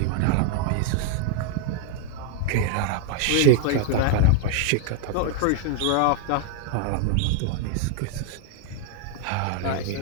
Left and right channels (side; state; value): both; different; correlation 0.00